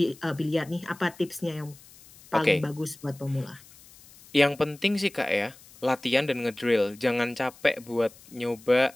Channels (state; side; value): noise; left; hiss, 23 dB below the sound